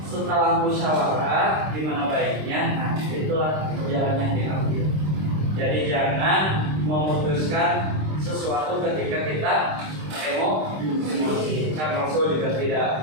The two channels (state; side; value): late; left; 26 ms